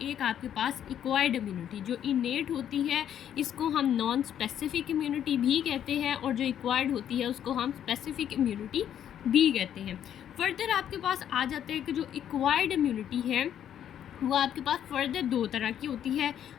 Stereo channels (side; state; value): right; quieter; 9.9 dB